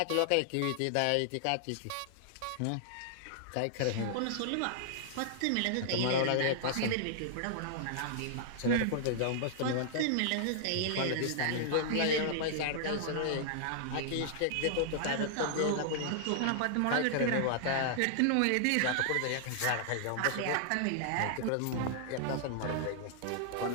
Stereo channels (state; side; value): different; both; correlation -0.01